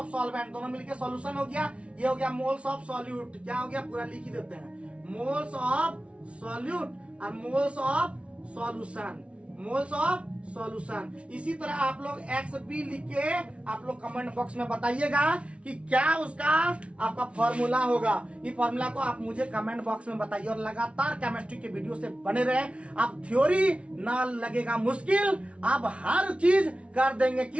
सॉल्वेंट, दोनों मिलके सॉल्यूशन हो गया। ये हो गया मोल्स ऑफ सॉल्यूट, क्या हो गया पूरा लिख ही देते हैं, मोल्स ऑफ सॉल्यूट और moles of solution, moles of solution. इसी तरह आप लोग एक्स बी लिख के आप लोग कमेंट बॉक्स में बताइएगा कि क्या उसका आपका फॉर्मूला होगा। ये फॉर्मूला को आप मुझे कमेंट बॉक्स में बताइए और लगातार केमिस्ट्री के वीडियो से बने रहे। आप थ्योरी ना लगेगा मुश्किल, आप हर चीज कर देंगे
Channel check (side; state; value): left; late; 0.061 ms